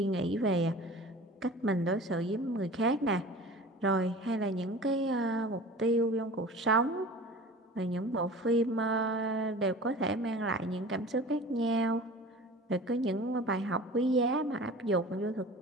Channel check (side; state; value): both; normal; correlation 0.39